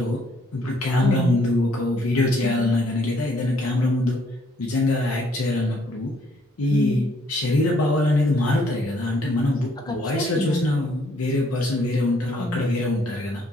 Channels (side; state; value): both; normal; correlation 0.66